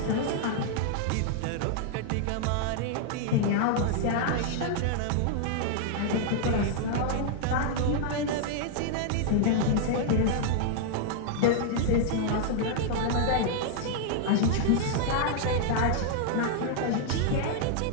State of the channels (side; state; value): both; different; correlation 0.00